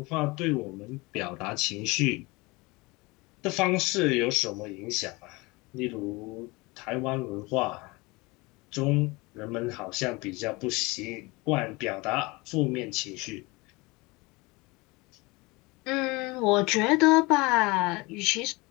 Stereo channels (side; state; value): right; quieter; 24.3 dB